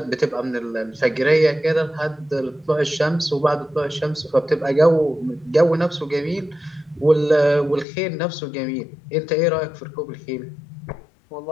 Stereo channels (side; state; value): right; drops out; at 7.9 s